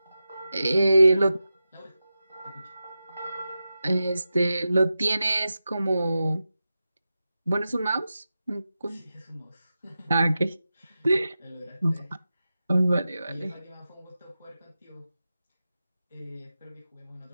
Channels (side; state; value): both; inverted; correlation -0.93